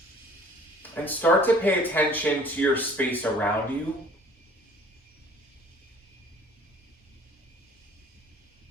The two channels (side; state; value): both; normal; correlation 0.52